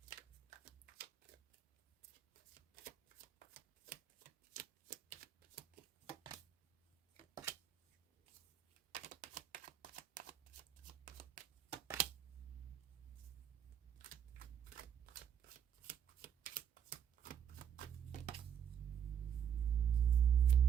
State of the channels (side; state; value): left; quieter; 8.5 dB